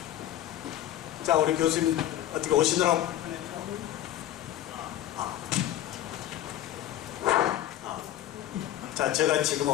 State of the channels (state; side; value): quieter; right; 12.6 dB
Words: 자, 우리 교수님 어떻게 오시느라고 자, 제가 지금